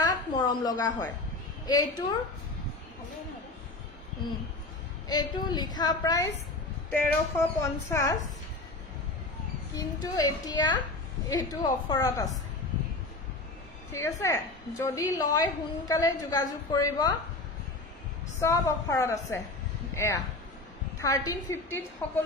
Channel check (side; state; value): right; quieter; 3.0 dB